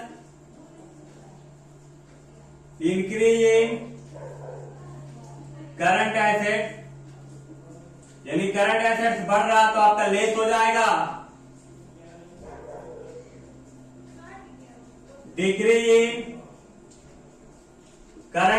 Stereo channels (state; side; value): identical; both; correlation 1.00